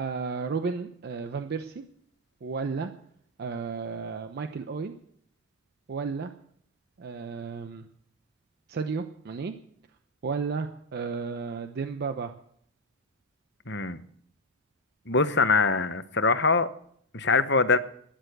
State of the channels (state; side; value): normal; both; correlation 0.00